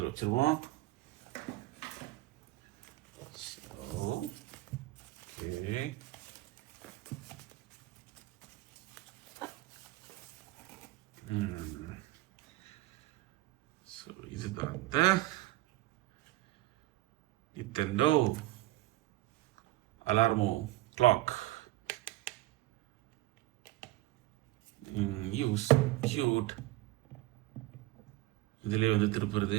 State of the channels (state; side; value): quieter; left; 17.7 dB